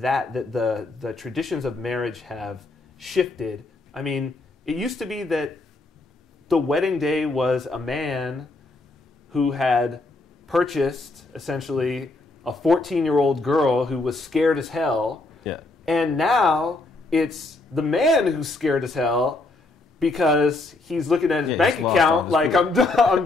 that the traditions of marriage have shifted. I mean, it used to be that the wedding day was a man who had purchased essentially a 14-year-old girl who was scared as hell. Yeah. And now it's the man who's scared as hell because he's looking at his bank account like, I'm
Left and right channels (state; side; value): quieter; right; 3.1 dB